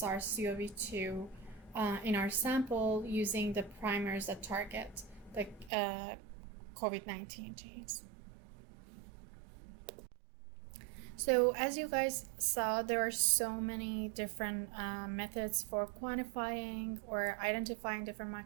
in our sample using the primers that target the COVID-19 genes. So as you guys saw, there are so many different methods for quantifying or identifying different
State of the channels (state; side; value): drops out; left; at 5.7 s